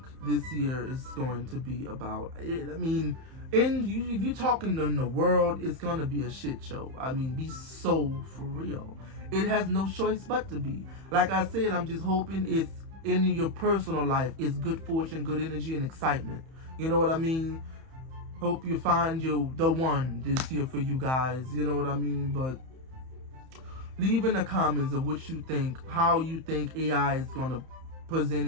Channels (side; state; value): left; late; 31 ms